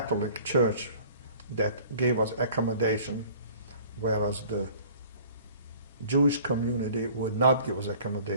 Church that gave us accommodation, whereas the Jewish community would not give us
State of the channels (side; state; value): both; inverted; correlation -0.50